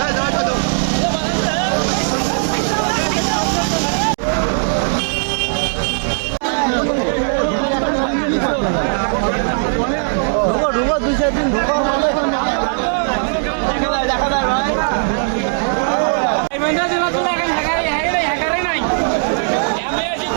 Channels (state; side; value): silent; left; digital silence